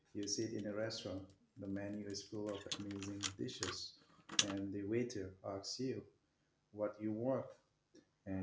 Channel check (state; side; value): identical; both; correlation 1.00